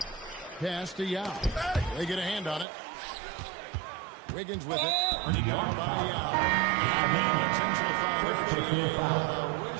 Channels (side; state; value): left; drops out; at 2.7 s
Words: Pass to Yao. They get a hand on it. Wiggins with it. Earning down by Yao. Intentional foul.